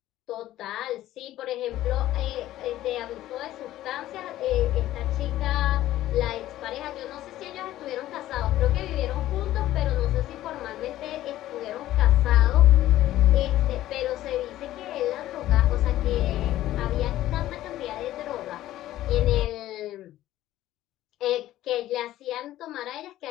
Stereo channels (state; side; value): quieter; right; 14.2 dB